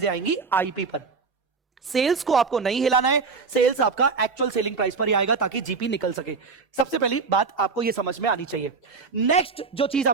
आएंगी आईपी पर। सेल्स को आपको नहीं हिलाना है, सेल्स आपका एक्चुअल सेलिंग प्राइस पर ही आएगा ताकि जीपी निकल सके। सबसे पहली बात आपको यह समझ में आनी चाहिए। नेक्स्ट जो चीज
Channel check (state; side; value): quieter; left; 4.8 dB